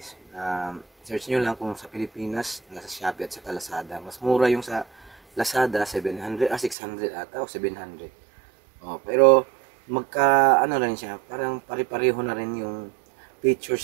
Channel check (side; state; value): left; drops out; at 6.8 s